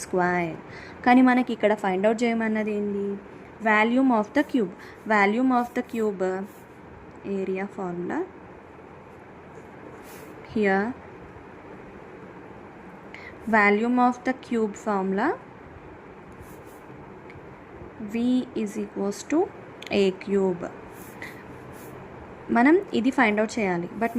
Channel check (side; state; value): both; identical; correlation 1.00